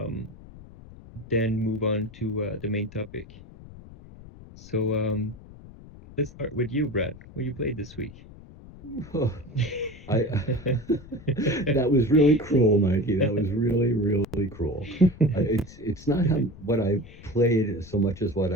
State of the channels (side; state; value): left; noise; rumble, 19 dB below the sound